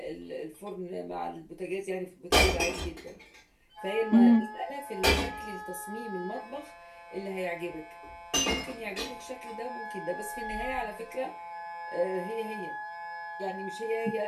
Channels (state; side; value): identical; both; correlation 1.00